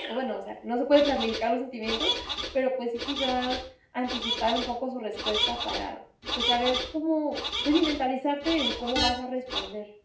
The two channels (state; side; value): identical; both; correlation 1.00